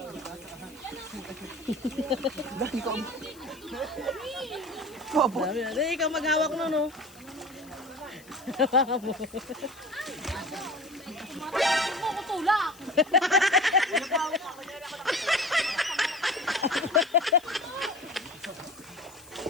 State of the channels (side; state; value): left; noise; hiss, 23 dB below the sound